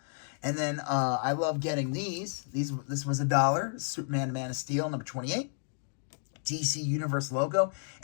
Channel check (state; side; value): silent; right; digital silence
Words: And then I love getting these. This was $1. Superman Man of Steel number 28. DC Universe logo.